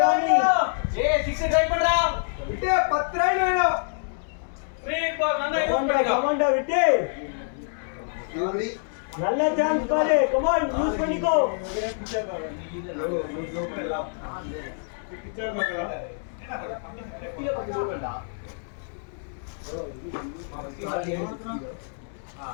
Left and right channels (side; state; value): right; silent; digital silence